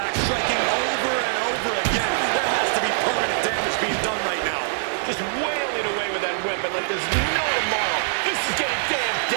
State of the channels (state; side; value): silent; left; 58 dB below the other